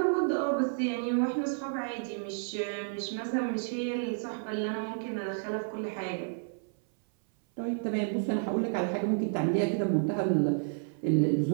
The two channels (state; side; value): silent; left; 56 dB below the other